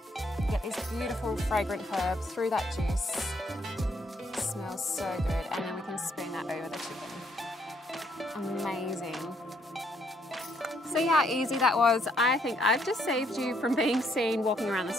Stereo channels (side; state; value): both; normal; correlation 0.70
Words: You get these beautiful fragrant herbs through that juice. It smells so good, and then we can spoon that over the chicken. Amazing. See how easy that was? I think I've just saved you from being seen walking around the